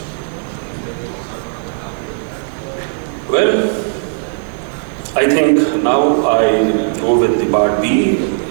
Well, I think now I go with the part B,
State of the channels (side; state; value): left; silent; 61 dB below the other